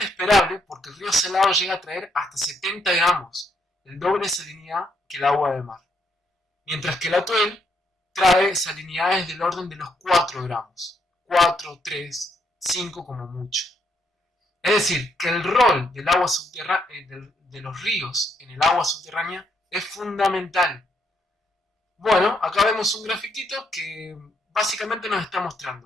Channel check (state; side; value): normal; both; correlation 0.75